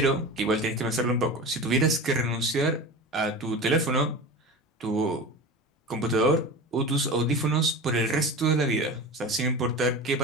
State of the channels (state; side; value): normal; both; correlation 0.30